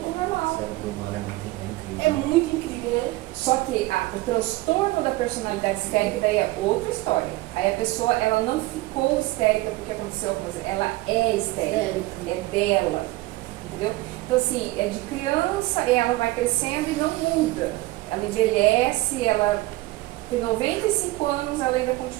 O normal. cérebro humano é muito incrível. É muito incrível, né? Só que o transtorno da personalidade histérica daí é outra história. Aí a pessoa, ela não ficou histérica porque aconteceu alguma coisa, ela é histérica, é dela, entendeu? Então assim, é de criança e ela vai crescendo e não muda. Ela envelhece, ela tem 95 anos, ela ainda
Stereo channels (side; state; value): left; quieter; 19.4 dB